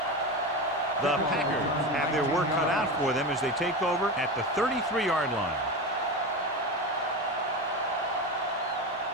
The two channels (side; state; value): both; normal; correlation 0.22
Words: The Packers have their work cut out for them as they take over at the 33-yard line.